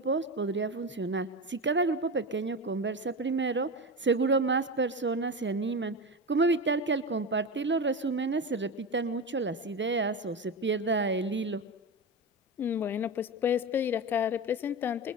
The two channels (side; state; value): both; normal; correlation 0.21